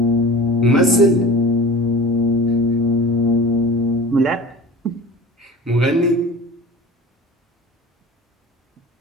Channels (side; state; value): both; normal; correlation 0.38